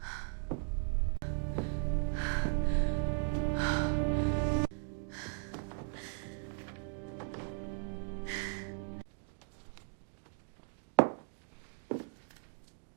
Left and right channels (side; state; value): left; silent; 53 dB below the other